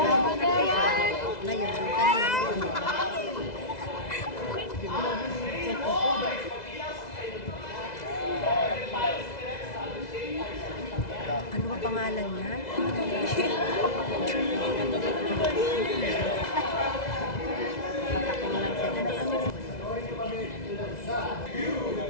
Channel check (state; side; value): late; right; 2.0 ms